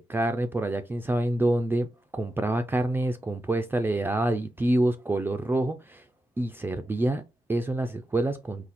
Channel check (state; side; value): normal; both; correlation 0.89